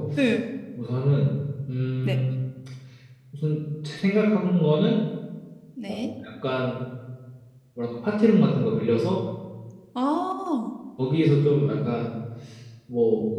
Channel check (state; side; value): identical; both; correlation 1.00